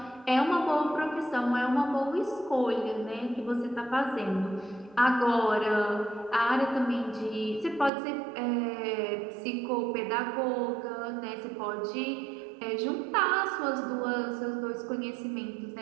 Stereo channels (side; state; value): left; drops out; at 7.9 s